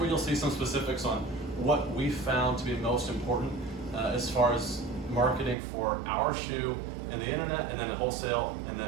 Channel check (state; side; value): drops out; left; at 5.6 s